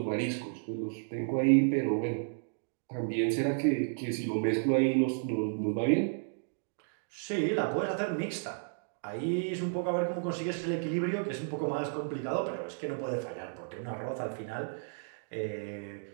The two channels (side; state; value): left; silent; digital silence